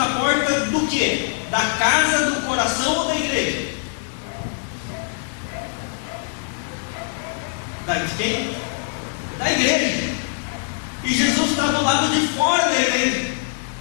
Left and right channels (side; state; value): right; silent; digital silence